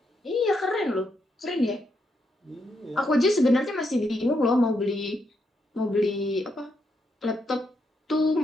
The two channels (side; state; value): both; normal; correlation 0.80